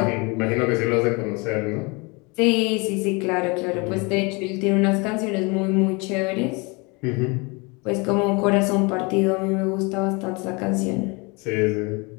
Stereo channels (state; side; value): quieter; right; 28.7 dB